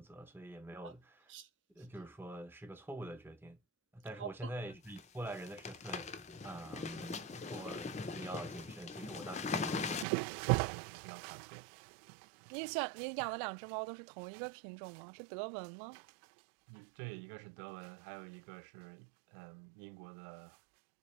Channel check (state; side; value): drops out; left; at 10.1 s